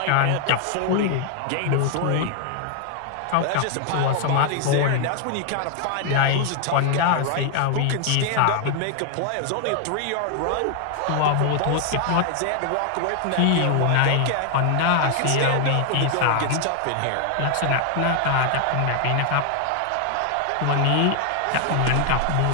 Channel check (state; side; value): different; both; correlation 0.00